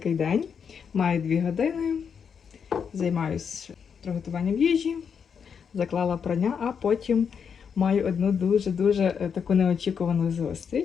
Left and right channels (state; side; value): quieter; right; 6.8 dB